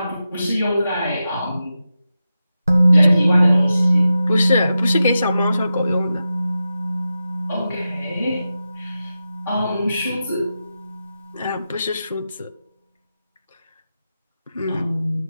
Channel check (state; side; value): inverted; both; correlation -0.91